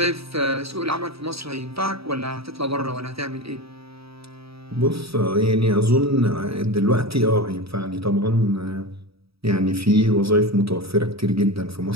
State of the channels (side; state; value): left; late; 0.77 ms